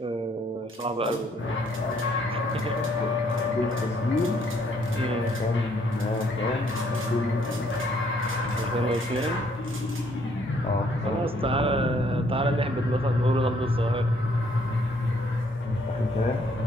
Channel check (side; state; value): both; normal; correlation 0.67